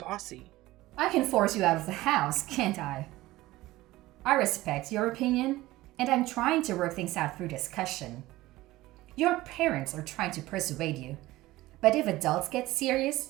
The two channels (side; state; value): left; quieter; 17.7 dB